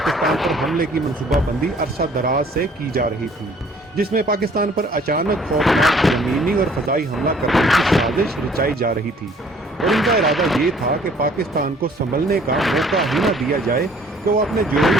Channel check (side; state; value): both; normal; correlation 0.57